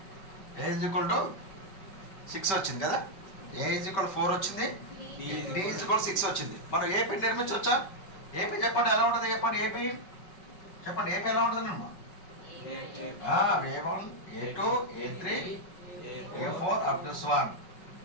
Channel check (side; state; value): right; late; 5.2 ms